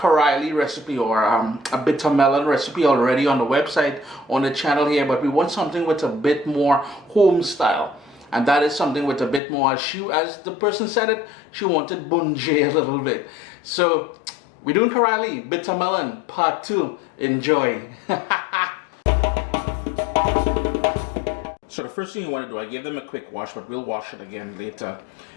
recipe or a bitter melon recipe already on the website, on the channel here, but we want something with a bit more home style. And that is something with a bit more, as the person said it, she wanted bunjay a little bit. So, we're doing Carilie, bitter melon, part 2. Enjoy. So the first thing you want to do, I gave them a quick wash, but we'll wash it again later.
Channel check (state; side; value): drops out; right; at 9.4 s